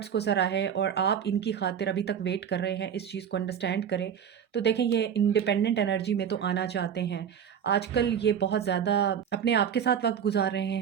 को सराहे और आप इनकी ख़ातिर अभी तक वेट कर रहे हैं, इस चीज़ को अंडरस्टैंड करें। तो देखें, ये इंडिपेंडेंट एनर्जी में तो आना चाहते हैं। आजकल ये बहुत ज़्यादा अपने आप के साथ वक़्त गुज़ार रहे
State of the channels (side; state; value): left; quieter; 8.3 dB